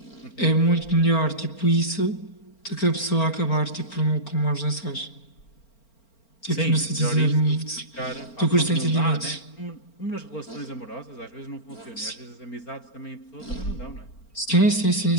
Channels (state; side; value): late; right; 4.4 ms